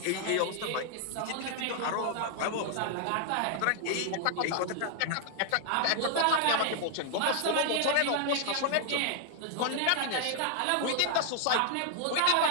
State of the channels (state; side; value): different; both; correlation 0.00